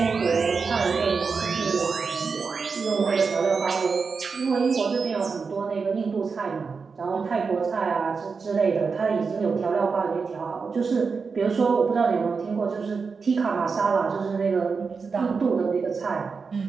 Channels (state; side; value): quieter; left; 5.0 dB